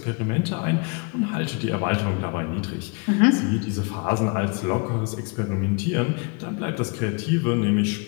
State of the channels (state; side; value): quieter; right; 32.8 dB